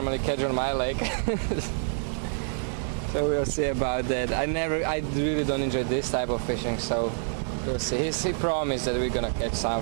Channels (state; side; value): silent; left; digital silence